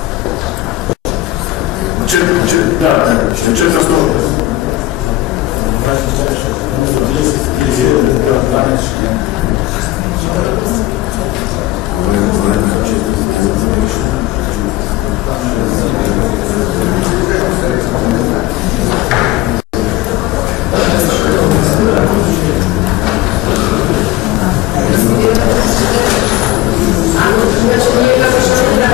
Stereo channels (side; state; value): right; quieter; 16.2 dB